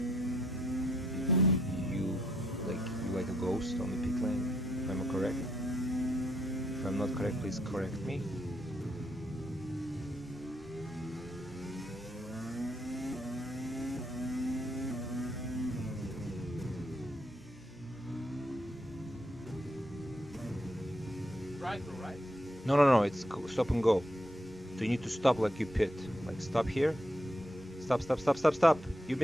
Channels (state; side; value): normal; both; correlation 0.76